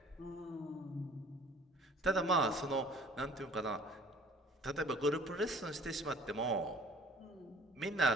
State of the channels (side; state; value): both; normal; correlation 0.51